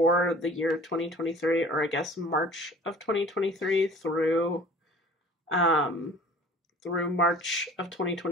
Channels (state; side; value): normal; both; correlation 0.47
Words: the year 2023, or I guess March of 2023 through March of